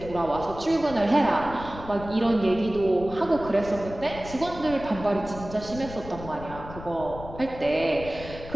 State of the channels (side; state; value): left; noise; rumble, 13 dB below the sound